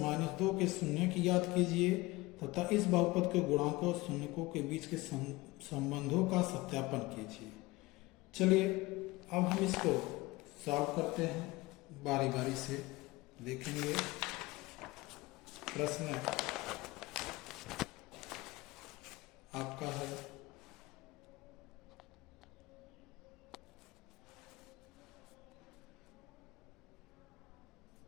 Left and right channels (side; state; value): right; quieter; 21.1 dB